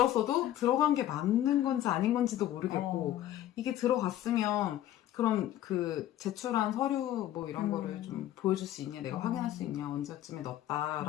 들어간 게 맞는 건지 아닌 건지도 모르겠고 이게 들어갔으면 그럼 그 제출한 서류 뭐 이런 거를 좀 보여줄 수 있냐 내가 확인할 수 있냐 언제쯤에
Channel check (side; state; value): right; quieter; 12.7 dB